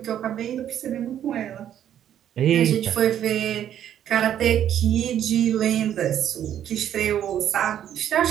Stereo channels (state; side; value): quieter; left; 10.4 dB